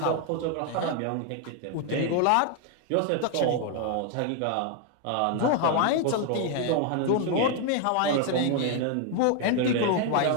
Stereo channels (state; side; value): different; both; correlation 0.01